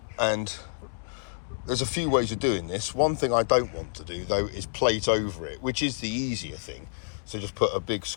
there's a few ways of doing this. One thing I don't want to do though is plate over it, which is the easier thing. So just put a big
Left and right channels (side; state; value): right; silent; digital silence